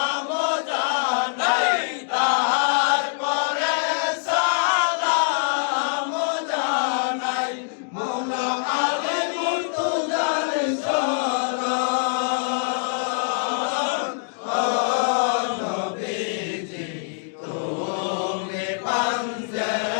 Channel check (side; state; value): right; silent; digital silence